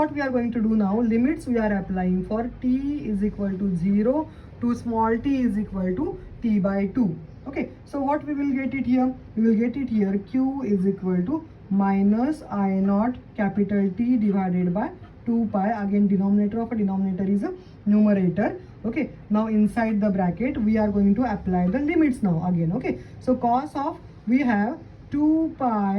we are going to do now, limits we are applying for t is equal to 0 to small t is equal to t by 2. Okay, so what we will get it here, we will get it here q is equal to minus I naught capital T divided by 2 pi. Again denominator of a denominator is a numerator. Okay, now inside the bracket we are going to apply the limits now again. Okay, so cos of we have 2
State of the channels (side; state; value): both; identical; correlation 1.00